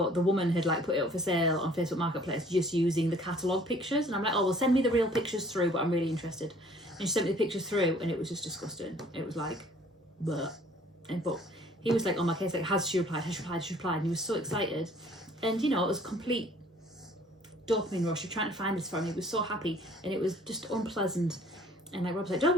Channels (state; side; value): normal; both; correlation 0.55